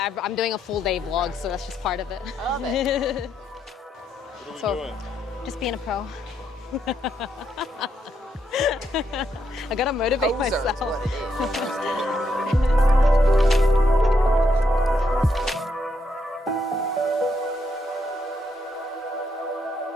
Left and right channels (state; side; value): normal; both; correlation 0.78